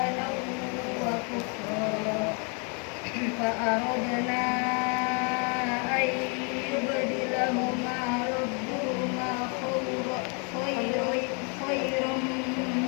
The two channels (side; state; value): right; quieter; 36.1 dB